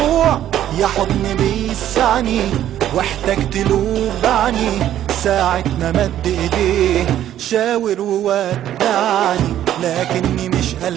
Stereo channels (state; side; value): quieter; left; 11.7 dB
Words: يا حضن بيسعني واحتجت له بعني، ساعة ما مد ايديه شاور وودعني لكني مش